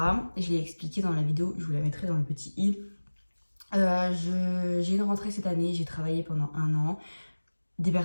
je l'ai expliqué dans la vidéo, je vous la mettrai dans le petit i. J'ai une rentrée cette année, j'ai travaillé pendant 1 an. Des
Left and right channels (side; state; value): both; inverted; correlation -1.00